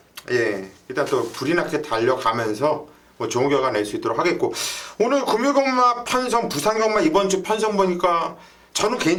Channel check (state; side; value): identical; both; correlation 1.00